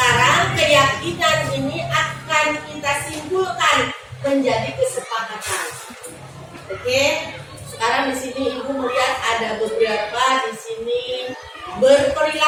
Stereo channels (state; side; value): identical; both; correlation 1.00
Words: keyakinan ini akan kita simpulkan menjadi kesepakatan. Oke, sekarang di sini Ibu melihat ada beberapa di sini